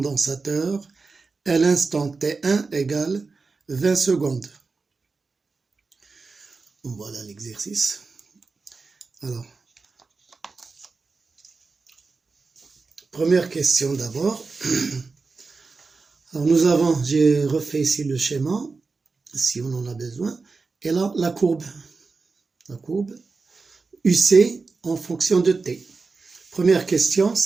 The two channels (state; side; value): quieter; left; 4.2 dB